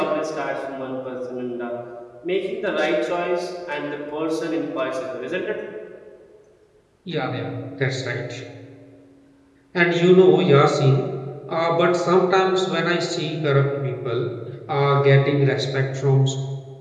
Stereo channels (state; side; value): identical; both; correlation 1.00